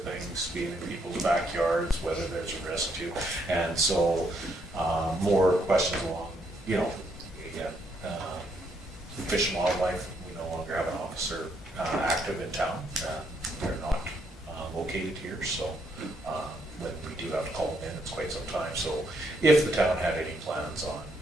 things, being in people's backyards, whether there's a risk to. And so, more questions along, you know, Fish and Wildlife, we no longer have an officer, active in town. They're not located here, so when we do have to call them in, it's quite some time. So if the town had any plans on,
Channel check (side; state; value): both; normal; correlation 0.73